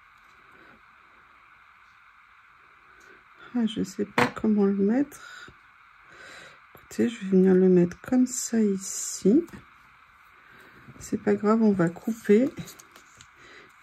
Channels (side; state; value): both; identical; correlation 1.00